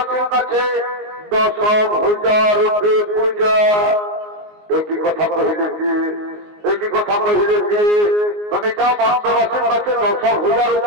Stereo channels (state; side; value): late; left; 19 ms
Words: কাছে 10,000 রূপে পূজা। একই কথা কহিলে কি, একই কথা কহিলে কি, তুমি চাও মর্তবাসীর কাছে 10,000